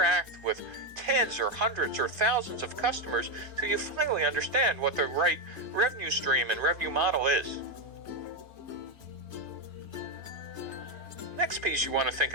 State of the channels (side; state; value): left; late; 3.2 ms